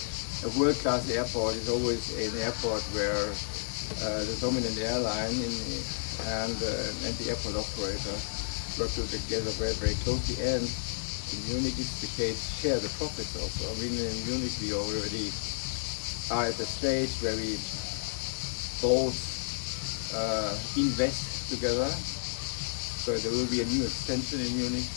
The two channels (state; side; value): silent; right; digital silence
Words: world-class airport is always an airport where the dominant airline and the airport operator work together very, very closely, and in Munich it's the case, share the profits also. I mean, in Munich we already are at the stage where we both invest together, so there will be a new extension in Munich